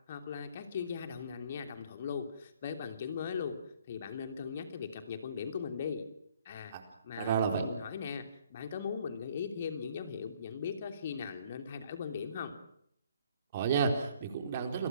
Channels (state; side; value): inverted; both; correlation -0.60